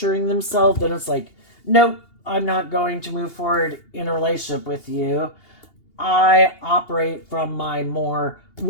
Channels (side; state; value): right; late; 2.8 ms